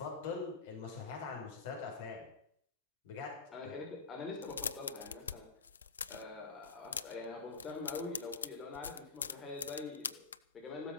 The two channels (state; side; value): quieter; right; 4.4 dB